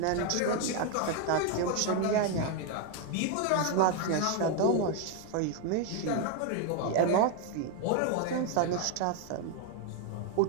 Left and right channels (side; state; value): both; different; correlation 0.01